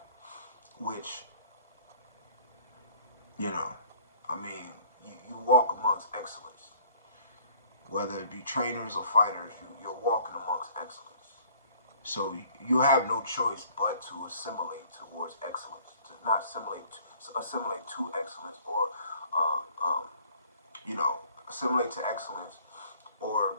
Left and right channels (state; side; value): inverted; both; correlation -0.55